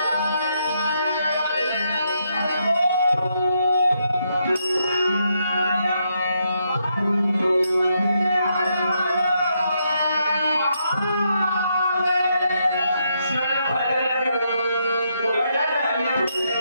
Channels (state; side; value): inverted; both; correlation -0.78